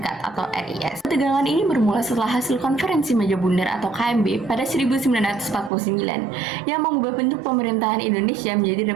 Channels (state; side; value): drops out; left; at 5.7 s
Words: atau RIS. Ketegangan ini bermula setelah hasil konferensi meja bundar atau KMB pada 1949 yang mengubah bentuk pemerintahan Indonesia menjadi